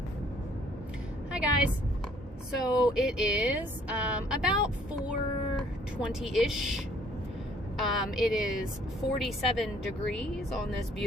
Hi guys. So it is about 4:20-ish. It is 47 degrees on this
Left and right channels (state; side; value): normal; both; correlation 0.61